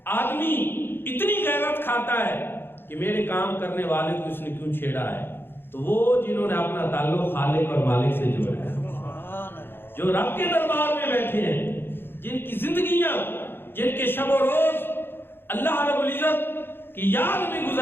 آدمی اتنی غیرت کھاتا ہے کہ میرے کام کرنے والے کو اس نے کیوں چھیڑا ہے، تو وہ جنہوں نے اپنا تعلق خالق اور مالک سے جوڑا ہے، جو رب کے دربار میں بیٹھے ہیں، جن کی زندگیاں، جن کے شب و روز اللہ رب العزت کی یاد میں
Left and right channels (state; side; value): late; right; 0.10 ms